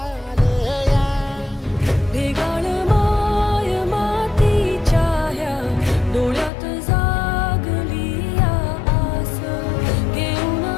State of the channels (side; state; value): right; drops out; at 6.5 s